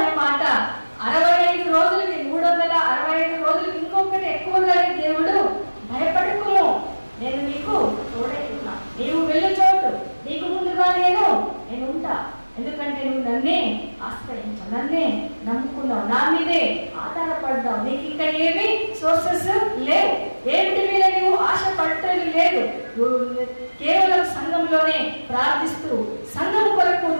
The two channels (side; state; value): both; inverted; correlation -1.00